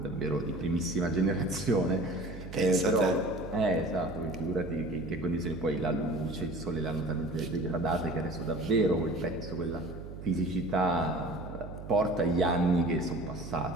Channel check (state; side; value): noise; right; hum, 11 dB below the sound